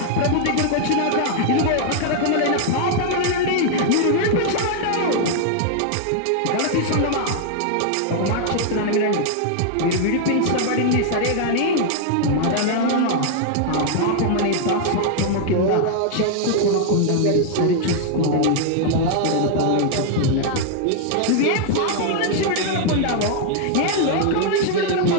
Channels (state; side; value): different; both; correlation 0.00